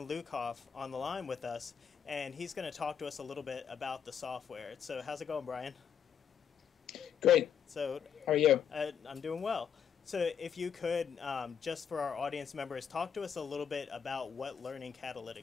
Lukoff on the line with us, and he's going to talk to us a little bit about the software. So how's it going, Brian? Great. So how are you? I'm doing well. So if you could, just for our audience members, talk to us a little bit about what Learning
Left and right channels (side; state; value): right; quieter; 7.9 dB